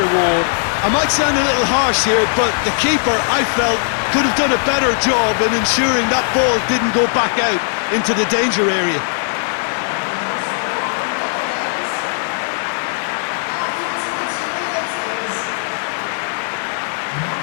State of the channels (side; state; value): right; silent; digital silence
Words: reward. I might sound a little harsh here, but the keeper, I felt, could have done a better job in ensuring that ball didn't go back out into the danger area.